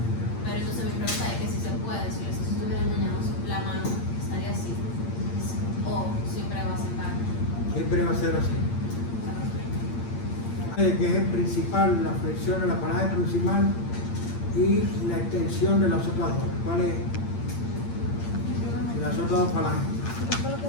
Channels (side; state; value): right; late; 8.7 ms